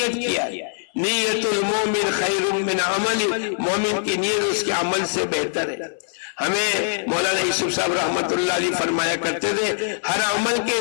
کیا ہے۔ نیت المومن خیر من عمل، مومن کی نیت اس کے عمل سے بہتر ہے۔ ہمیں مولانا یوسف صاحب رحمت اللہ علیہ فرمایا کرتے تھے ہر عمل کے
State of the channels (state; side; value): silent; right; 64 dB below the other